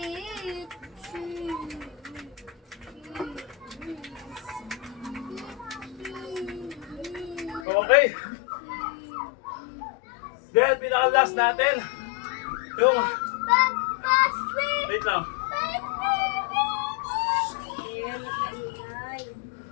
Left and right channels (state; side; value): drops out; right; at 7.7 s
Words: Okay. Then, pinaka-last natin. Yung, wait lang.